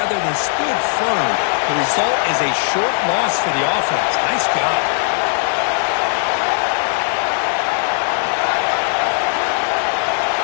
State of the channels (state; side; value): silent; right; digital silence